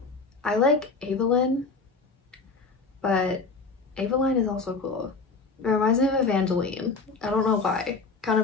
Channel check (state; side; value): quieter; right; 4.2 dB